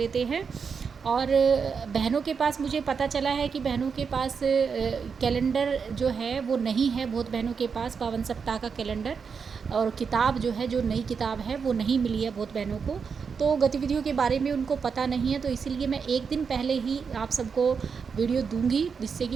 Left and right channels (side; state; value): left; quieter; 5.9 dB